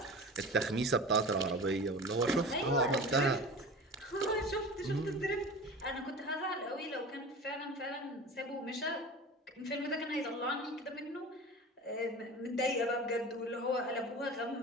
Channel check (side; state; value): both; normal; correlation 0.35